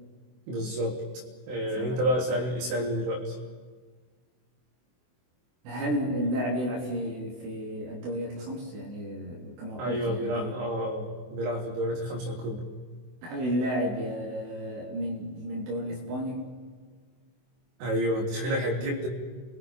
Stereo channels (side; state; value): left; late; 24 ms